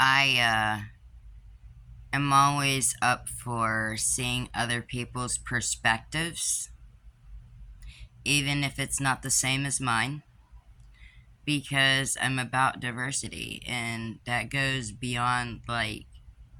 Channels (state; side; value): identical; both; correlation 1.00